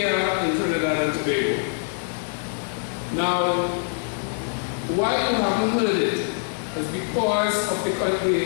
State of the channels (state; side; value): silent; right; 62 dB below the other